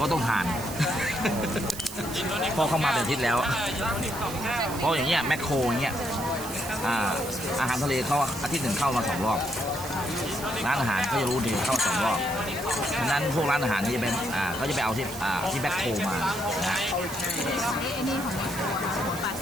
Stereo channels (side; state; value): right; noise; hiss, 11 dB below the sound